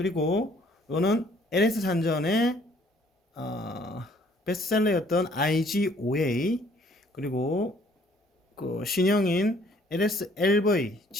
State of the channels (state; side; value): normal; both; correlation 0.61